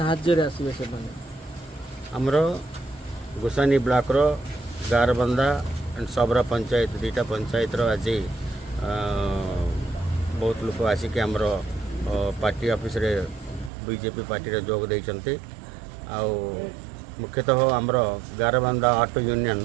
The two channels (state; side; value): drops out; left; at 13.7 s